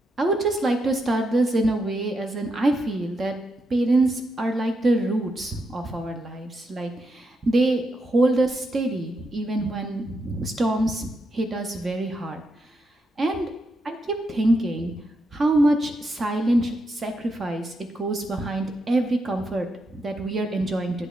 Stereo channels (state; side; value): normal; both; correlation 0.82